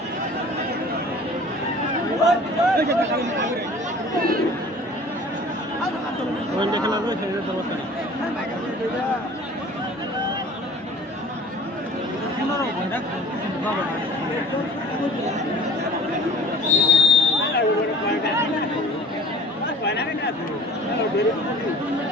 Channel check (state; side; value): normal; both; correlation 0.46